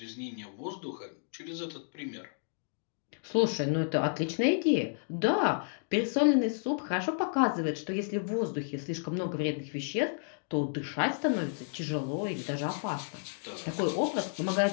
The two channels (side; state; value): right; silent; digital silence